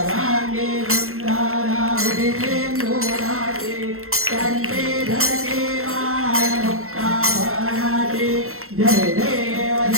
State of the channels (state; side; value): late; left; 0.62 ms